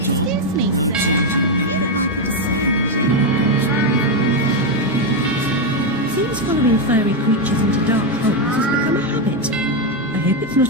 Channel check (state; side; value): normal; both; correlation 0.05